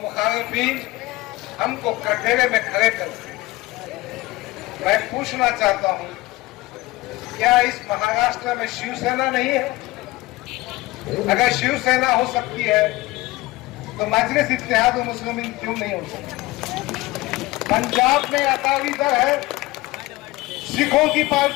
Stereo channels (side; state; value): right; quieter; 19.5 dB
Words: हमको कटघरे में खड़े करते हैं। मैं पूछना चाहता हूं, क्या इस महाराष्ट्र में शिवसेना नहीं है? अगर शिवसेना हो सकती है तो मजलिस इत्तेहादुल मुस्लिमीन क्यों नहीं हो सकती? पंजाब में अकाली दल है, सिखों की